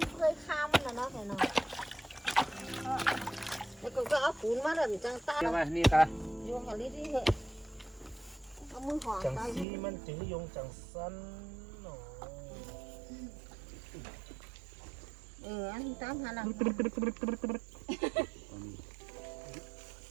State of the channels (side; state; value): left; drops out; at 9.7 s